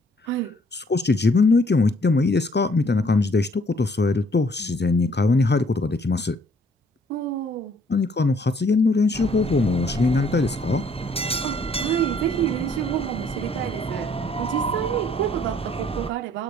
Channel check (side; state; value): both; normal; correlation 0.63